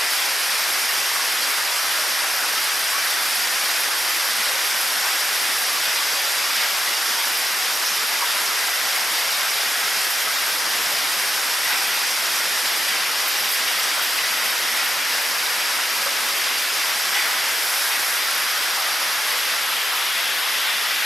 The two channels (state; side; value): normal; both; correlation 0.88